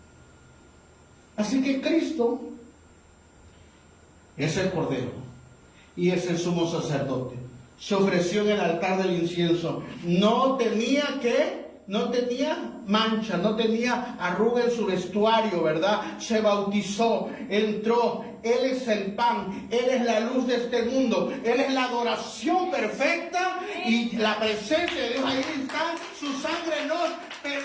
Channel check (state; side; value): identical; both; correlation 1.00